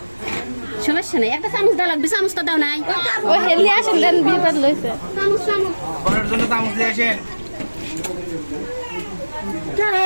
সমস্যা নেই একটা চামচ দেওয়া লাগবে চামচটা দাও নাই ও হেলি আসেন দেন বিপদ লইছে চামচ চামচ বরের জন্য চামচ দিয়ে আসেন।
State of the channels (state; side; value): inverted; both; correlation -1.00